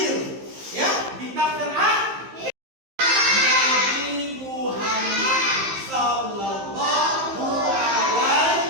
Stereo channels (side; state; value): left; late; 15 ms